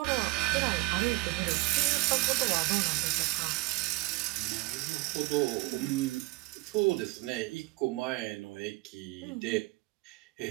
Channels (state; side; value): quieter; left; 22.8 dB